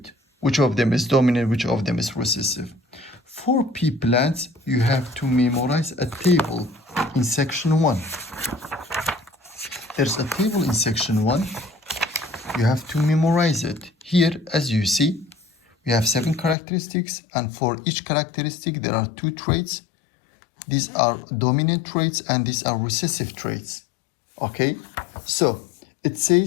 which of them is dominant, which of them is recessive. For pea plants, you have to memorize a table in section 1. There's a table in section 1. You have to memorize it. Here, as you see, we have 7 characteristics, and for each characteristic there are 2 traits. These are dominant traits and these are recessive traits. Okay, so it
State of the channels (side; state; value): right; drops out; at 16.6 s